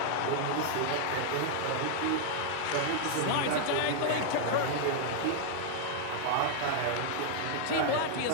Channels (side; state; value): both; different; correlation -0.01